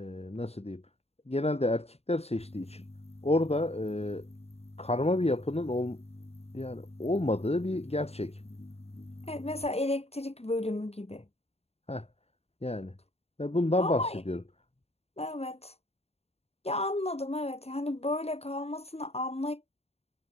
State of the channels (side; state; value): right; late; 0.30 ms